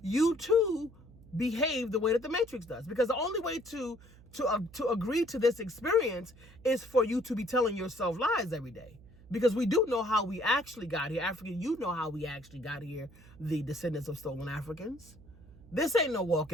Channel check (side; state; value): right; noise; hum, 23 dB below the sound